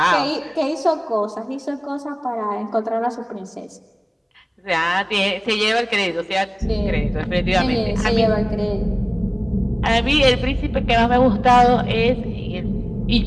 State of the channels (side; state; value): both; identical; correlation 1.00